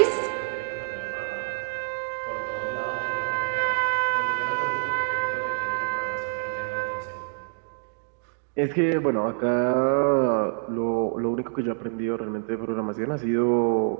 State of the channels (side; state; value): left; silent; digital silence